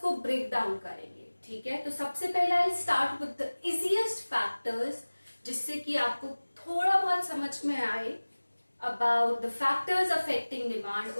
ब्रेक डाउन करेंगे, ठीक है। तो सबसे पहले I start with the easiest factors, जिससे कि आपको थोड़ा बहुत समझ में आए about the factors affecting demand.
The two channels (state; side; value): inverted; both; correlation -1.00